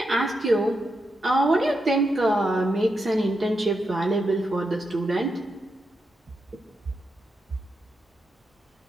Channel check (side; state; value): both; normal; correlation 0.85